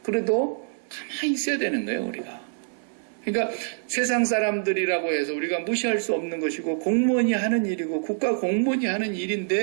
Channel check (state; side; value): silent; left; 61 dB below the other